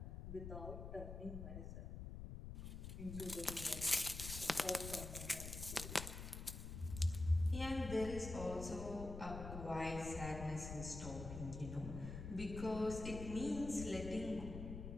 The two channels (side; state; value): left; noise; rumble, 7 dB below the sound